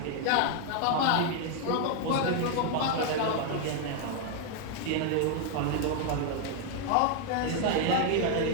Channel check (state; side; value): different; both; correlation 0.01